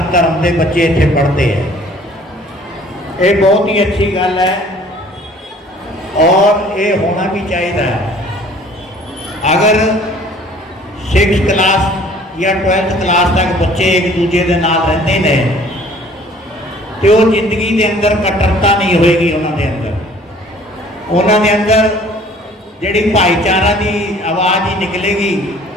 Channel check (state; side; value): normal; both; correlation 0.53